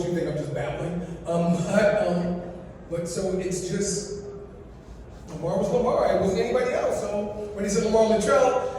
you think I'm just babbling. But so it's just, Lamar was Lamar. It wasn't anybody else. So when he said Lamar Luttrell,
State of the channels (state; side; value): identical; both; correlation 1.00